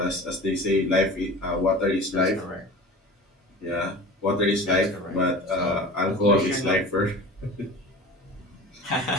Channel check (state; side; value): normal; both; correlation 0.37